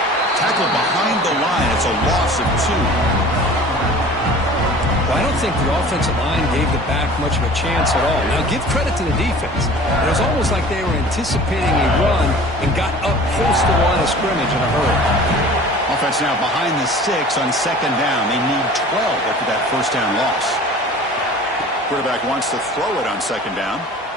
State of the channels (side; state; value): both; normal; correlation 0.43